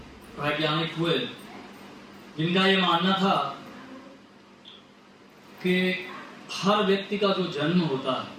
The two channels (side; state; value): both; identical; correlation 1.00